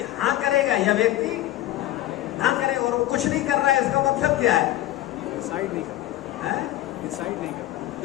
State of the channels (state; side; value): quieter; right; 15.0 dB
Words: हाँ करेगा या व्यक्ति ना करे, और वो कुछ नहीं कर रहा है, इसका मतलब क्या है? डिसाइड नहीं कर